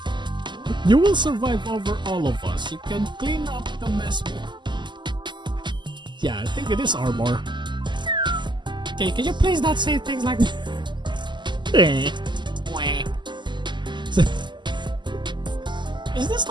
You will survive over all of us. You can clean up the mess. Yeah, I think it is armor. Okay, can you please not say things like that? Is this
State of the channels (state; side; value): late; left; 0.22 ms